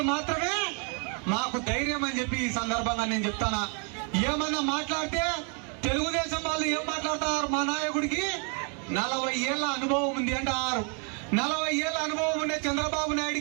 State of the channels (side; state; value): left; quieter; 38.1 dB